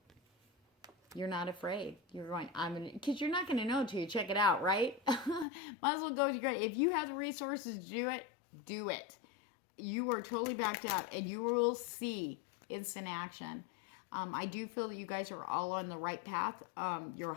You're not afraid. You're going, because you're not going to know until you check it out, right? Might as well go to your, if you have the resources to do it, do it. You are totally backed out and you will see instant action. I do feel that you guys are all on the right path, your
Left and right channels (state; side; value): drops out; right; at 5.5 s